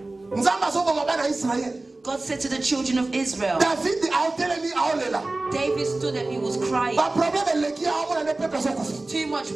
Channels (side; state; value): left; quieter; 3.0 dB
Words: God said to the children of Israel, David stood and he was crying. Too much